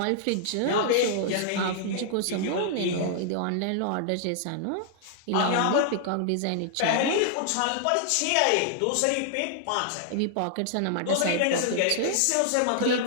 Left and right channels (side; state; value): both; different; correlation -0.01